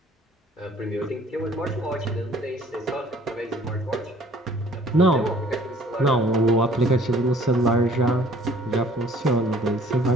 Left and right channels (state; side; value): normal; both; correlation 0.55